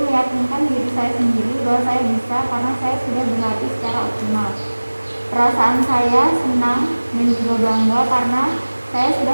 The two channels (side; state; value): both; inverted; correlation -1.00